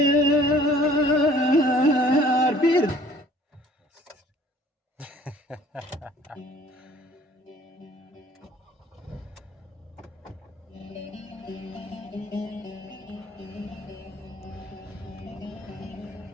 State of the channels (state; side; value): normal; both; correlation 0.53